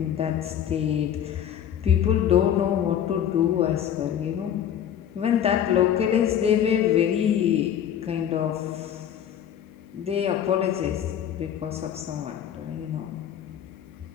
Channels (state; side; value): quieter; right; 9.7 dB